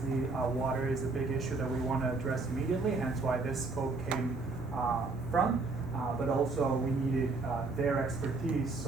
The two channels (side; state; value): left; quieter; 3.7 dB